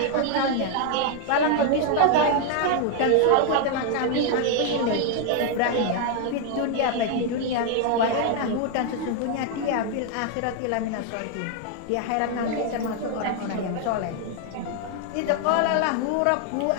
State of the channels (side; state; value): both; different; correlation 0.00